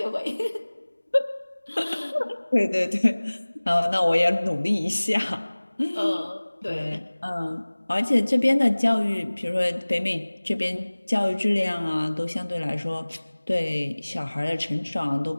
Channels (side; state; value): both; inverted; correlation -1.00